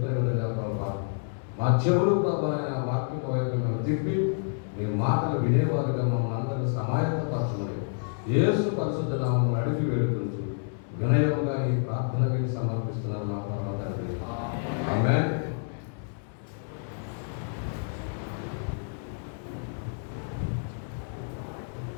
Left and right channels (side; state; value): right; silent; digital silence